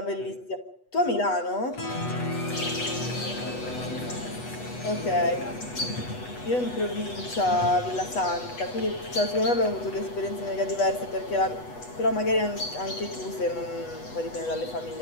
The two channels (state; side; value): late; right; 8.2 ms